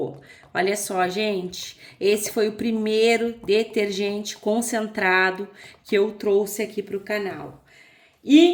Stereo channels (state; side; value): identical; both; correlation 1.00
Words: Olha só, gente, esse foi o primeiro detergente concentrado que eu trouxe aqui pro canal.